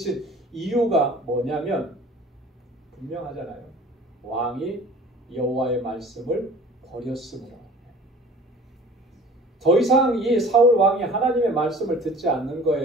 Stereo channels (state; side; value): normal; both; correlation 0.45